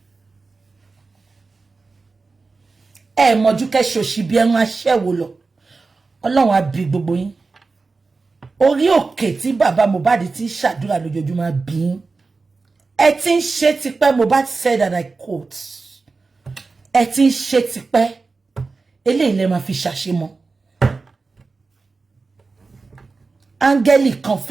Mojuke shoshi bi en asewo lo. Ọlọ́run á bí gbogbo yín. Orí òkè tí bàbá Mohbad ti ṣàdúrà lójoojúmọ́ bí. Ẹ tin ṣe tipẹ́, Mohbad said, and I quote. Ẹ tin ṣe tipẹ́. Eléyìí lẹ máa fi ṣàṣemọ́. Áńgẹ́lì kan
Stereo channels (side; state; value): left; quieter; 4.0 dB